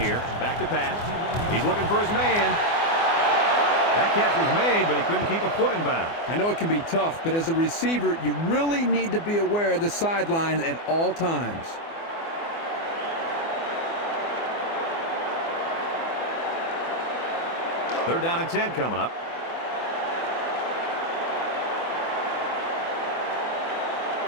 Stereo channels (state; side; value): late; right; 24 ms